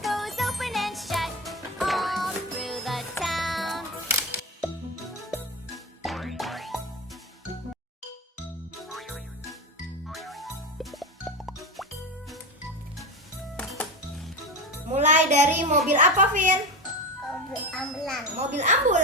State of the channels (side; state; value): both; normal; correlation 0.20